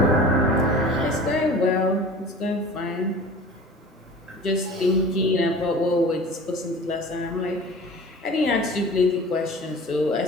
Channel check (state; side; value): normal; both; correlation 0.41